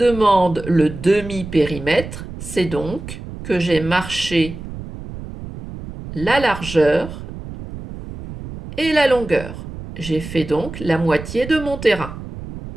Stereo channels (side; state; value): right; noise; rumble, 11 dB below the sound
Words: le demi-périmètre, c'est donc que j'ai marché la largeur et la longueur. J'ai fait donc la moitié de mon terrain.